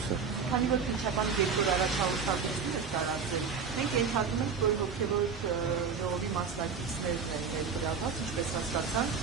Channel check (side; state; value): left; quieter; 5.8 dB